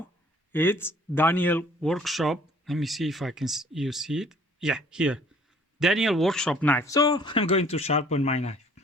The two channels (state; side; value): normal; both; correlation 0.56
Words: it's Daniel Workshop. Let me see if I can you see it. Yeah, here, Daniel Workshop knife. So I'm going to sharpen my knife.